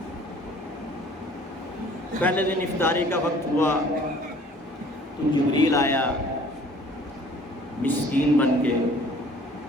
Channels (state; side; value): normal; both; correlation 0.52